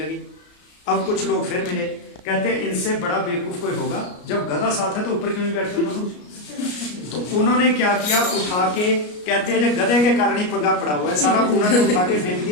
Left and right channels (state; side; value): late; right; 33 ms